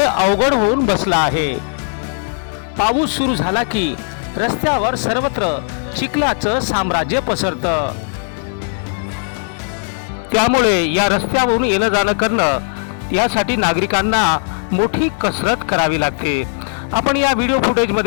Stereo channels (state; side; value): silent; right; 57 dB below the other